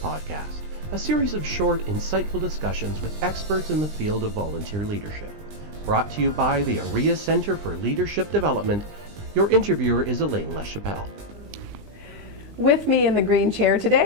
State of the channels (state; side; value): late; left; 20 ms